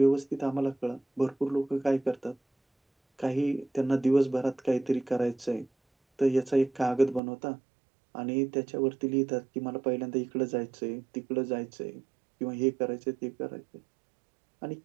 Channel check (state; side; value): drops out; left; at 7.2 s